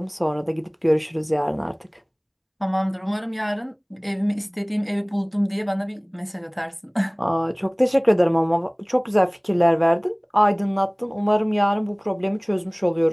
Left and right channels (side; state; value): both; identical; correlation 1.00